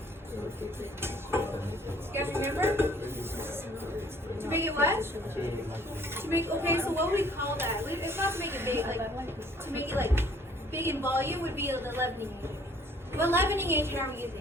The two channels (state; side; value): normal; both; correlation 0.58